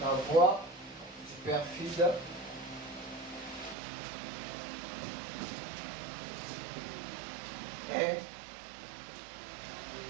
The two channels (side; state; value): left; drops out; at 3.8 s